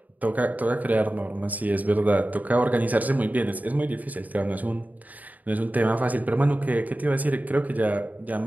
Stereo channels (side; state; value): left; late; 0.077 ms